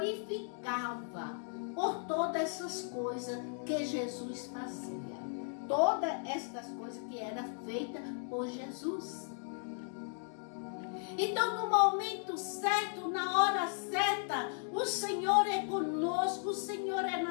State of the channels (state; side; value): silent; right; 54 dB below the other